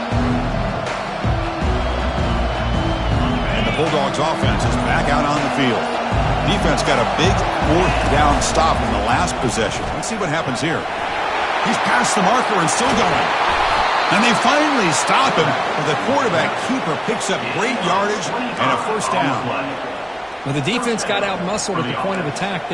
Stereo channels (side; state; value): both; identical; correlation 1.00